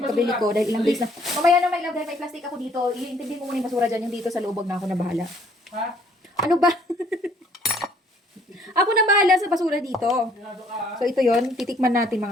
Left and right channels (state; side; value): normal; both; correlation 0.62